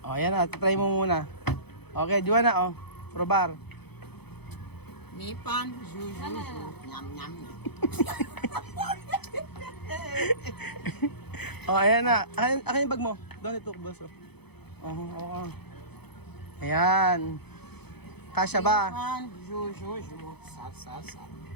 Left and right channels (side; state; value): right; late; 0.98 ms